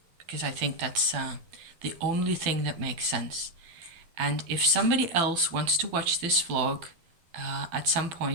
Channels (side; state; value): left; late; 12 ms